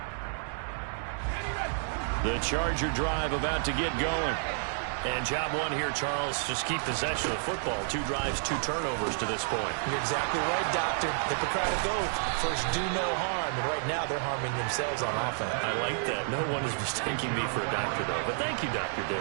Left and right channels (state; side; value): silent; left; digital silence